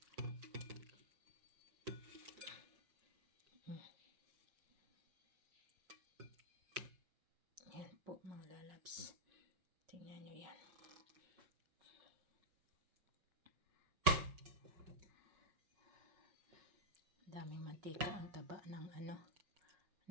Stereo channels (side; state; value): left; late; 5.4 ms